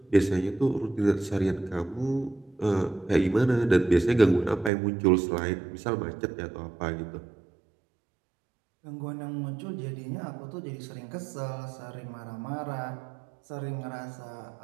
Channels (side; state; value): left; drops out; at 4.7 s